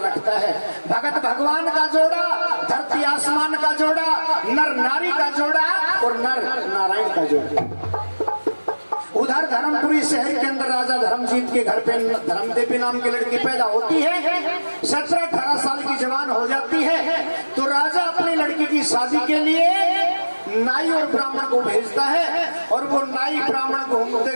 रखता है। भगत भगवान का जोड़ा, धरती आसमान का जोड़ा, नर नारी का जोड़ा और नर नारायण का जोड़ा। उधर धर्मपुरी शहर के अंदर राजा धर्मजीत के घर पे धर्मदेवी नाम की लड़की पैदा होती है। 17-18 साल की जवान हो जाती है तो राजा अपनी लड़की की शादी के लिए नाई और ब्राह्मण को भेजता है, और वो नाई ब्राह्मण घूमते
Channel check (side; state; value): both; inverted; correlation -1.00